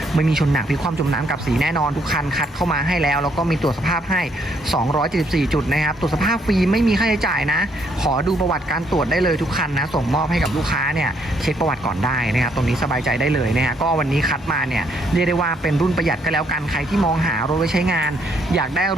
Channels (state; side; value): normal; both; correlation 0.71